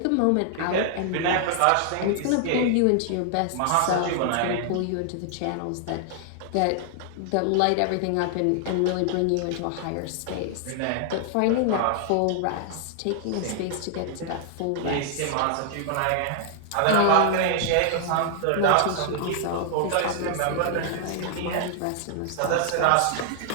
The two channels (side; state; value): both; different; correlation 0.00